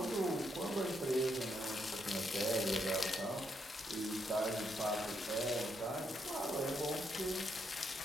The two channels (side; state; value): both; normal; correlation 0.77